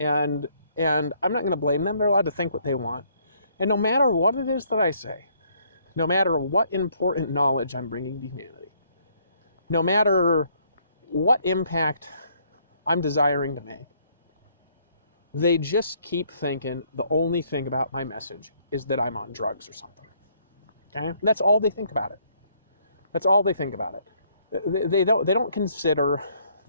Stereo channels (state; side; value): inverted; both; correlation -0.67